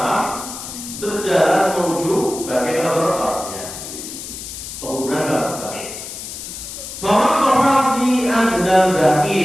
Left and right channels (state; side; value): noise; left; hiss, 10 dB below the sound